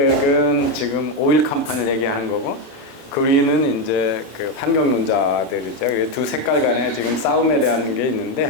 지금 오일 컴퍼니를 얘기하는 거고, 그린은 이제 그 환경론자들이죠. 두 색깔 간에 지금 싸움에 대한 게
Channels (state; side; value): late; right; 26 ms